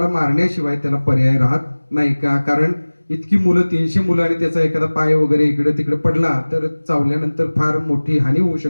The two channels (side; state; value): both; inverted; correlation -1.00